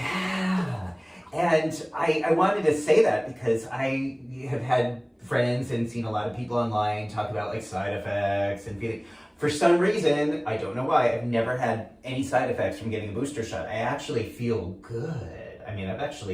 And I wanted to say that because I have had friends and seen a lot of people online talk about like side effects and feeling. For some reason, I don't know why, I've never had any side effects from getting a booster shot. I actually feel good. I mean, I've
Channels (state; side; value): identical; both; correlation 1.00